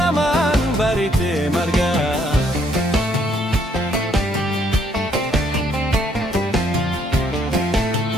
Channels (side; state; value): both; normal; correlation 0.68